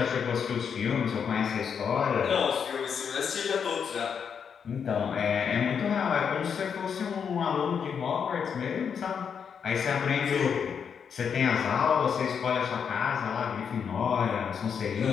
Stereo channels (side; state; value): right; quieter; 7.0 dB